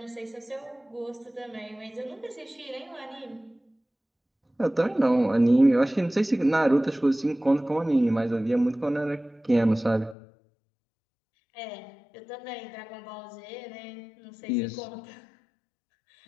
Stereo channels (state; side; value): drops out; right; at 10.2 s